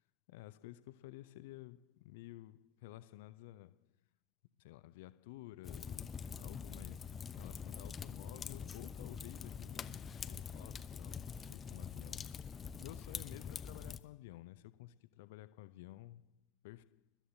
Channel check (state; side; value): quieter; right; 7.4 dB